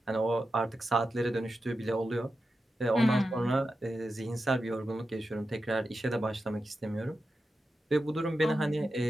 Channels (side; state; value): both; normal; correlation 0.90